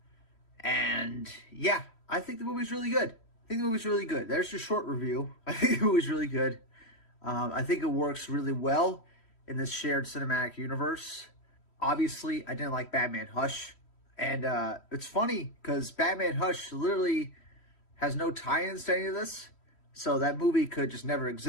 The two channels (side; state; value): right; late; 3.1 ms